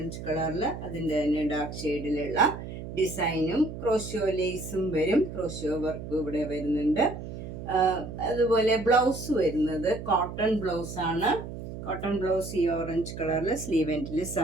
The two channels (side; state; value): right; noise; hum, 9 dB below the sound